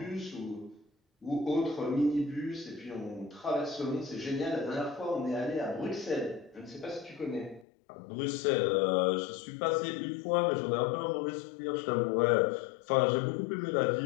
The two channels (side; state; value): right; drops out; at 7.7 s